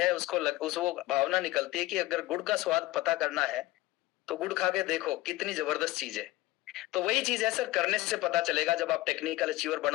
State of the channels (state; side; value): quieter; right; 18.1 dB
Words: वो भावना निकलती है कि अगर गुड़ का स्वाद पता करना है तो गुड़ खा के देखो, कितनी जबरदस्त चीज है। तो वही चीज है सर, करने से पता चलेगा। जब आप टेक्निकल अचीवर